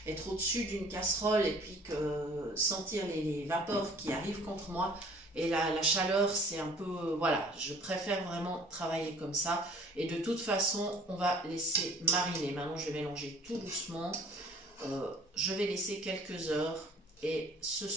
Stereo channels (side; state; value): both; normal; correlation 0.52